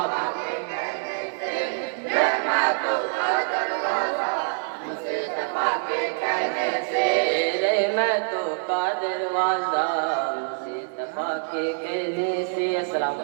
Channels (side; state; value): left; silent; 62 dB below the other